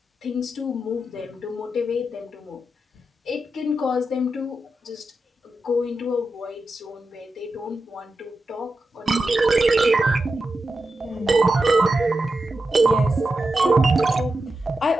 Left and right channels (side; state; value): both; normal; correlation 0.89